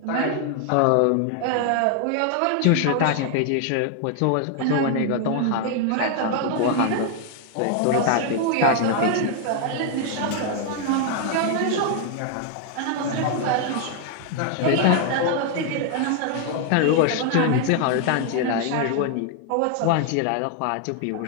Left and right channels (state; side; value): different; both; correlation 0.00